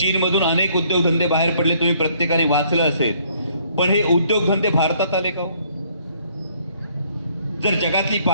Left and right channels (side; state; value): both; inverted; correlation -0.64